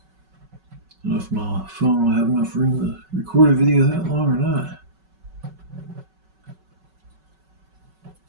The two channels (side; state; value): left; late; 5.3 ms